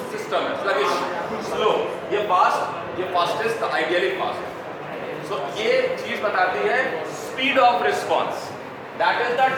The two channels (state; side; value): identical; both; correlation 1.00